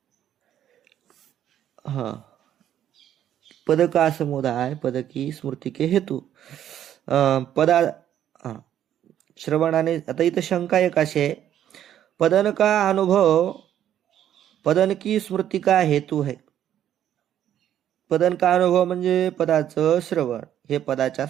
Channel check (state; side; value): quieter; left; 10.8 dB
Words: हा, पदका समुदाय पदकी स्मृती के हेतू. पदा हा, श्रवणाने. आता इथं शंका एक अशी आहे, पदन का अनुभव पदन की स्मृती का हेतू है. पदन का अनुभव म्हणजे पदाचं श्रवण हे पदाच्या